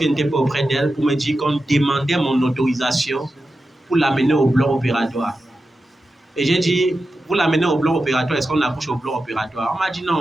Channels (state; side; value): normal; both; correlation 0.91